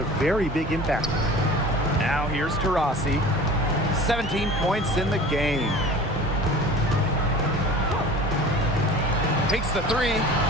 very big impact. Now here's Taurasi. 17 points in the game. Takes the three.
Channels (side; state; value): both; normal; correlation 0.41